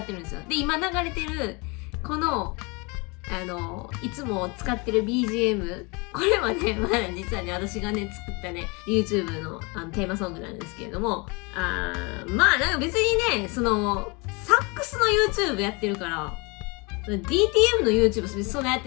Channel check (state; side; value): quieter; right; 28.7 dB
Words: てるんですよ。で、今流れてる、この、いつも使ってる BGM、これはね、実はね、私がね、作ったね、YouTube のテーマソングなんですけれども、なんか別にね、その、サックスの YouTube やってるから、DTM の YouTube そんなやっ